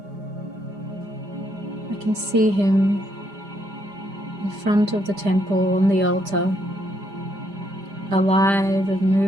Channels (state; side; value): late; left; 5.0 ms